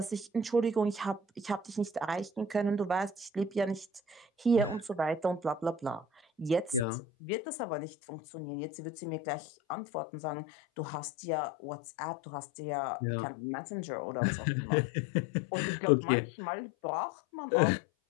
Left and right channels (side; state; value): right; drops out; at 6.9 s